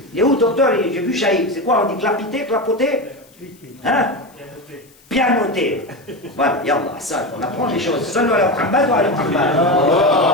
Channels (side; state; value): left; noise; hiss, 29 dB below the sound